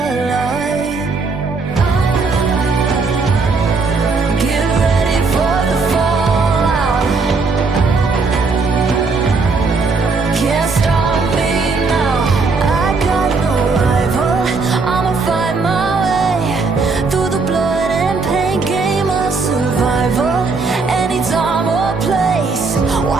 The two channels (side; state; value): left; quieter; 4.2 dB